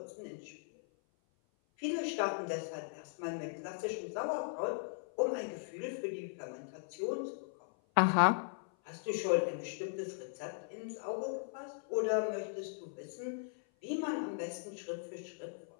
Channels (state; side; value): silent; right; 52 dB below the other